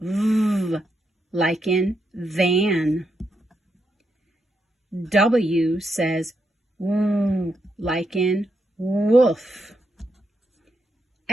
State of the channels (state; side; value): normal; both; correlation 0.81